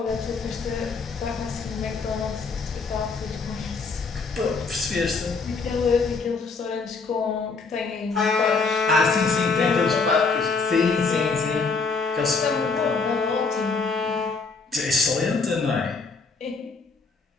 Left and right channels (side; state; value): right; quieter; 4.4 dB